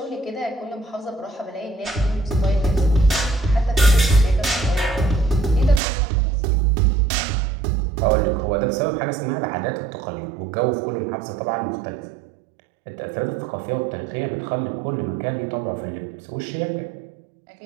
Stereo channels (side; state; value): left; drops out; at 5.8 s